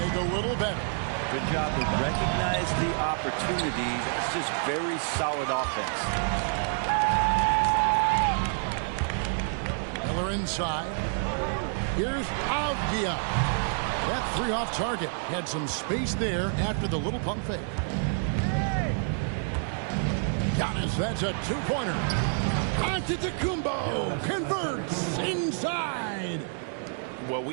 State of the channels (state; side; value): silent; left; 59 dB below the other